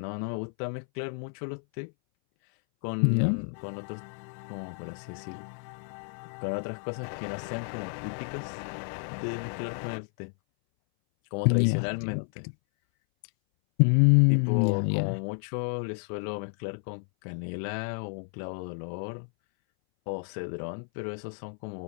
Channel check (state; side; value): silent; right; 58 dB below the other